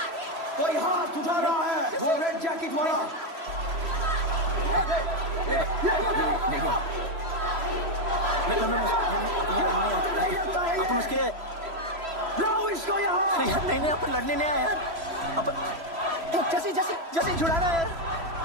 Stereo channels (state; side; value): late; left; 3.0 ms